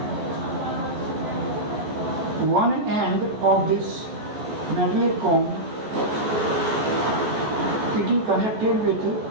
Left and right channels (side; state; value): left; late; 14 ms